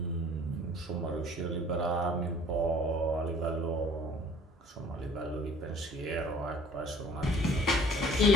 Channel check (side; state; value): both; normal; correlation 0.52